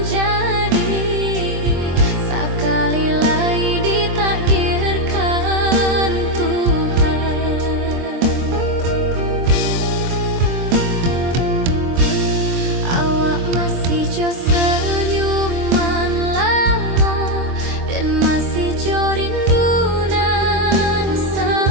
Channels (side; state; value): left; late; 23 ms